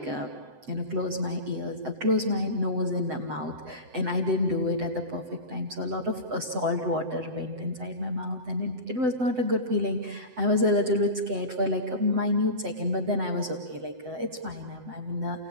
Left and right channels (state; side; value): late; left; 7.9 ms